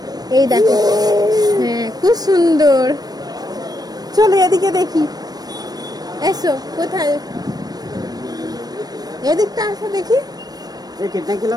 এই দেখো, হ্যাঁ খুব সুন্দর। চলো এদিকে দেখি, এসো। কোথায়? এদিকটা আসো দেখি।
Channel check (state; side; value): late; left; 0.19 ms